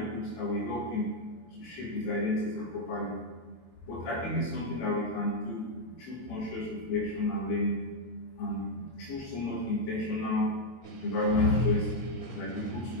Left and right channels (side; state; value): right; late; 23 ms